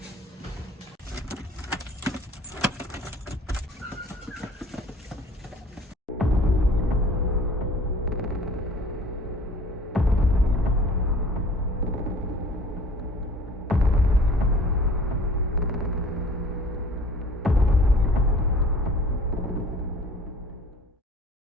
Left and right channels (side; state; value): both; normal; correlation 0.48